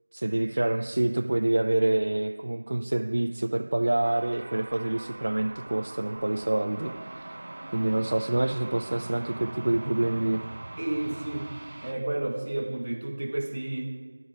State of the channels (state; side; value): inverted; both; correlation -1.00